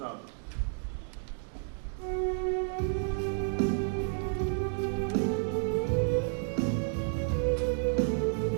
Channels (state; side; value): silent; left; 57 dB below the other